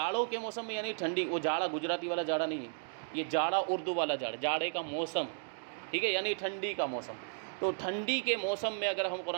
کے موسم میں یعنی ٹھنڈی، وہ جاڑا گجراتی والا جاڑا نہیں ہے، یہ جاڑا اردو والا جاڑا، جاڑے کا موسم، ٹھیک ہے، یعنی ٹھنڈی کا موسم، تو ٹھنڈی کے موسم میں اگر ہم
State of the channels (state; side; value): silent; left; digital silence